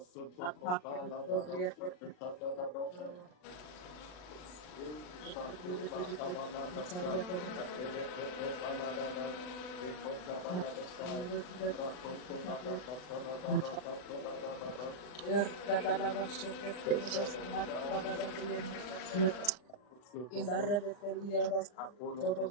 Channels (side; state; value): right; late; 39 ms